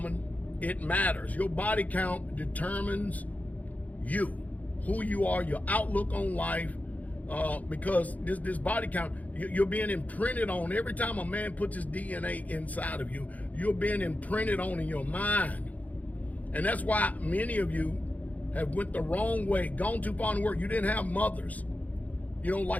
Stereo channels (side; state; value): right; late; 0.075 ms